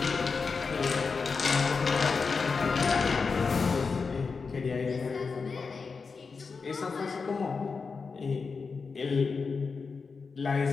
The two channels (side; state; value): right; quieter; 4.9 dB